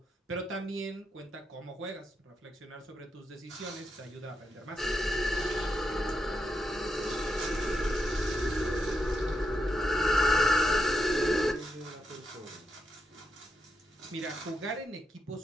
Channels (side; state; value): both; normal; correlation 0.83